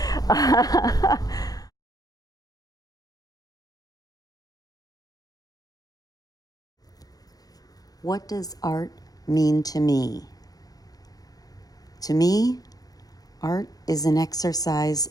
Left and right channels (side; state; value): right; late; 0.18 ms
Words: What does art mean to me? To me, art is an exercise